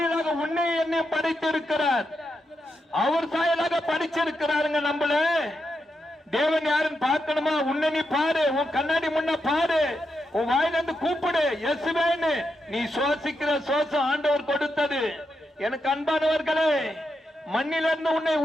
உன்னை என்னை படைத்திருக்கிறார். அவர் சாயலாக படிச்சிருக்கிறாருங்க. நம்மள தேவன் யாருன்னு பார்க்கணுமா? உன்னை நீ பாரு, உன் கண்ணாடி முன்ன பாரு, உன் வாயிலிருந்து கூப்பிடு இயேசுவேன்னு. நீ சுவாசிக்கிற சுவாசம் ஆண்டவர் கொடுத்தது. எனக்கு அன்பானவர்களே, மண்ணிலிருந்து உன்னை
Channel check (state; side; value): normal; both; correlation 0.84